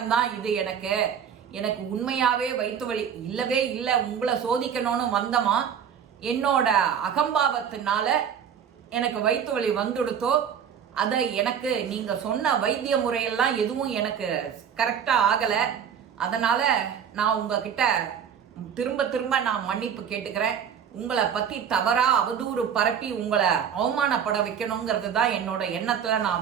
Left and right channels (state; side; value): quieter; left; 8.0 dB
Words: தான் இது. எனக்கு உண்மையாவே வயிற்று வலி இல்லவே இல்லை. உங்களை சோதிக்கணும்னு வந்தமா, என்னோட அகம்பாவத்தினால எனக்கு வயிற்று வலி வந்துடுத்தோ. அதை எனக்கு நீங்க சொன்ன வைத்திய முறையெல்லாம் எதுவும் எனக்கு கரெக்டா ஆகல. அதனால நான் உங்ககிட்ட திரும்ப நான் மன்னிப்பு கேட்டுக்கிறேன். உங்களை பத்தி தவறா அவதூறு பரப்பி உங்களை அவமானப்பட வைக்கணுங்கிறது தான் என்னோட எண்ணத்துல